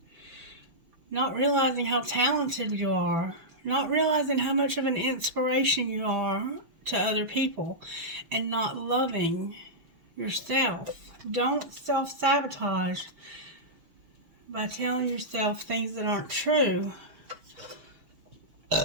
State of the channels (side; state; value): left; late; 6.0 ms